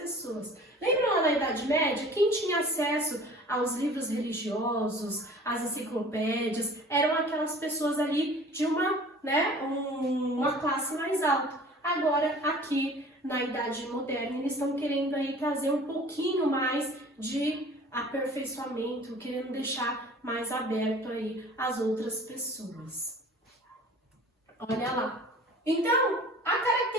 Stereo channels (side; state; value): both; normal; correlation 0.46